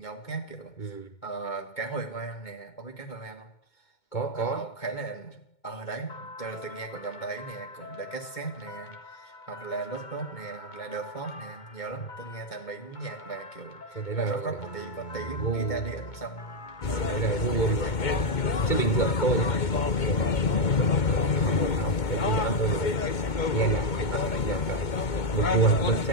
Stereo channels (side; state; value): right; late; 2.2 ms